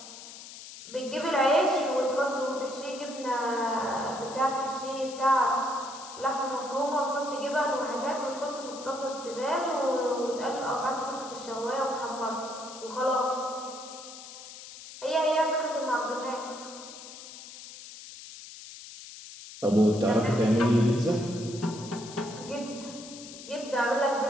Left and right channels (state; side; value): noise; left; hiss, 14 dB below the sound